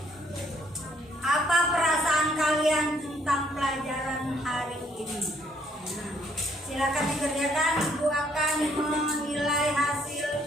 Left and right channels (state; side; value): normal; both; correlation 0.67